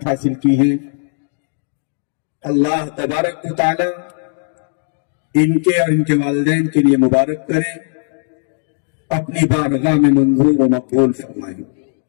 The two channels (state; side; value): silent; right; digital silence